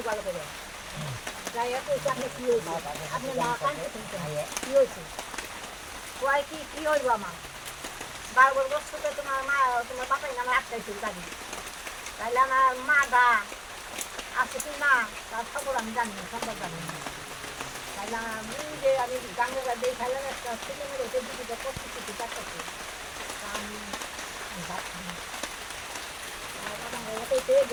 ভালো করে যাই হোক আপনি কি হয়েছে আপনি না কানতে শুনতে কি হয়েছে কয় কি হইব আমার 12 বছর থেকে তোমার মা তোমার বাপাই নামে আটকাইছিল গাড়ি তাইলে আমার মা দা আছে কি না তার খবর আমি জানি না সম্ভব জানি না তাইলে আমি যে আমি গাঙ্গা দিয়ে খাইলাম একটা ছেলে মেয়ে ওকে দিদিটা করতে কিছু চারটাছে আমি ভাত খাই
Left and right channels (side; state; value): both; identical; correlation 1.00